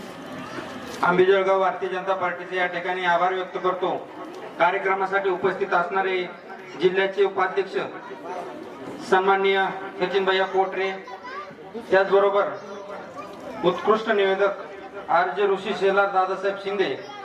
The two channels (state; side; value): identical; both; correlation 1.00